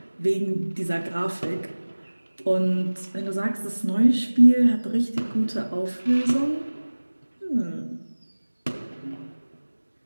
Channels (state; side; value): inverted; both; correlation -1.00